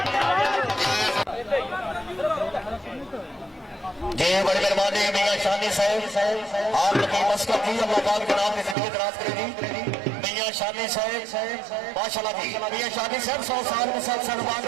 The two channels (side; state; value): left; drops out; at 8.8 s